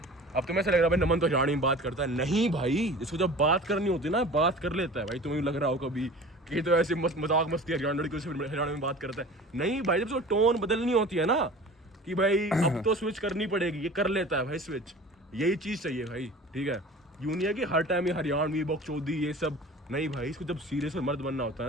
अब तुम्हें ऐसा लग रहा है भाई नमन तो हरियाणवी में बात करता है, नहीं भाई, जिसको जब बात करनी होती है ना, बात कर लेता है भाई। तुम्हें लग रहा हो कभी कि तो ऐसे मजाक मस्ती हरियाणवी में बात करता है, नहीं भाई, जब उसको टोन बदलनी होती है ना, कि भाई अब तो स्विच करनी पड़ेगी, ये कर लेता है भाई स्विच। यही चीज़ चाहिए भाई, ठीक है। यूं नहीं है कि हर टाइम ये हरियाणवी बकचोदी ये सब, नहीं भाई, इसको जब सीरियस और मर्द बनना होता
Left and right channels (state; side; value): normal; both; correlation 0.40